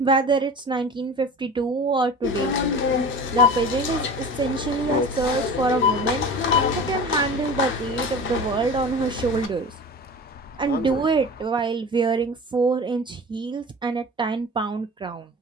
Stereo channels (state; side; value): normal; both; correlation 0.36